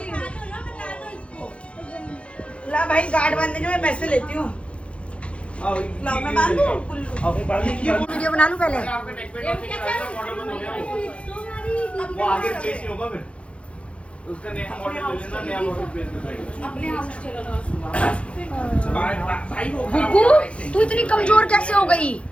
ला भाई, गार्ड बांधने जो मैं पैसे लेती हूँ। लाओ मैं बांध दूँ गुल्लू। वीडियो बना लूँ पहले। वो आगे प्लेस ही होगा फिर। उसका नया मॉडल ले लेना, नया मॉडल प्लेस में भाई वो गुग्गू तू इतनी कमजोर कैसे हो गई?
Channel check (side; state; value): right; late; 0.061 ms